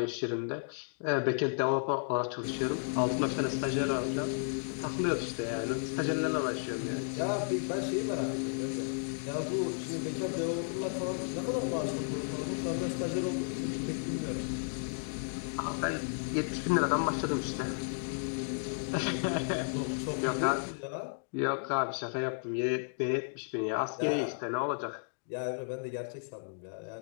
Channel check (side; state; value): right; silent; digital silence